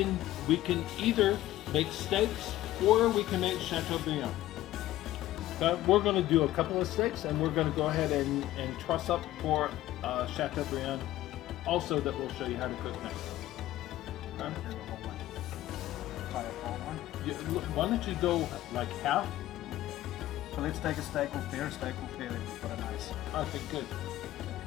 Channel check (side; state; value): right; quieter; 14.9 dB